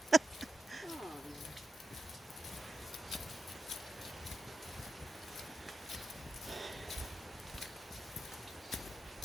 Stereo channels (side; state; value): both; normal; correlation 0.87